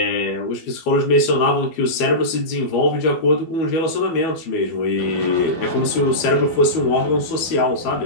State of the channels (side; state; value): right; late; 12 ms